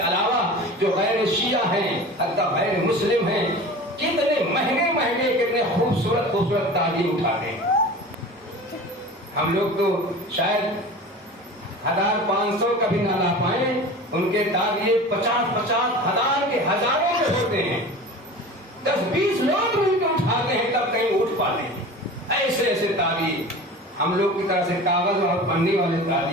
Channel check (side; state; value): both; normal; correlation 0.36